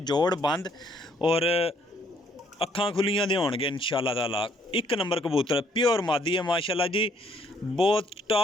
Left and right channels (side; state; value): both; normal; correlation 0.66